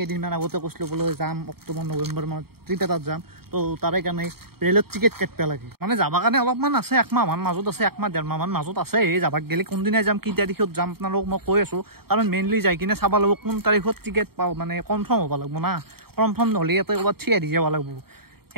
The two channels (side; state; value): left; late; 0.95 ms